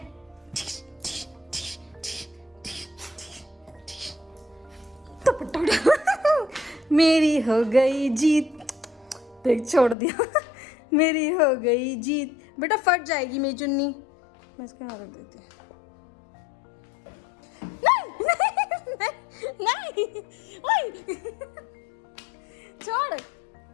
मेरी हो गई जीत, देख छोड़ दिया। मेरी हो गई जीत। बेटा फट जाएगी मेरी चुन्नी, मैं इसके हाथ रख देती हूँ। नहीं ओए छोड़।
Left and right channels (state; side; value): drops out; right; at 10.0 s